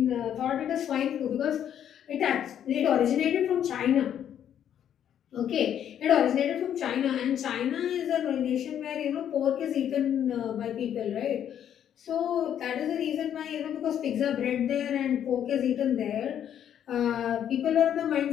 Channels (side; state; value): right; quieter; 9.7 dB